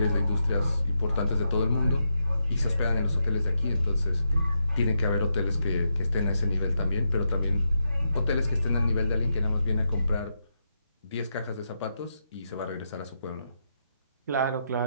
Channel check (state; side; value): inverted; both; correlation -0.84